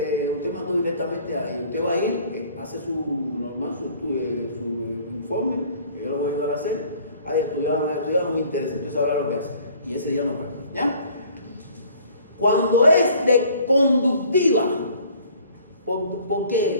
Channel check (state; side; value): inverted; both; correlation -0.54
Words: usted mandó directamente ahí. Usted va a ir, hace su informe, que yo lo voy a ayudar a hacer. Hay estudiado, no me interesa, usted sabrá lo que hace. Y ese día no paga. ¿Ya? Cuando es de conductiva, ¿por qué?